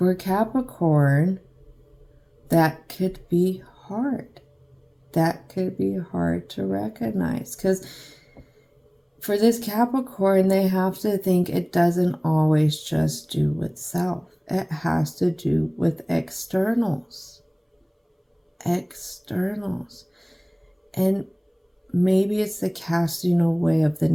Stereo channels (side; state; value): both; identical; correlation 1.00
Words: Capricorn, that could be hard. That could be hard to recognize, because for this Capricorn, they have to think it doesn't always just do with self. It has to do with externals. Externals. And maybe it's the casting away of the